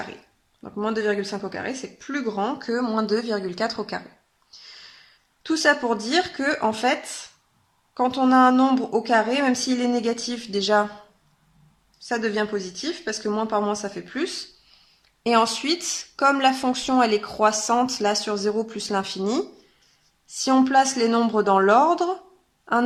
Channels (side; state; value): both; identical; correlation 1.00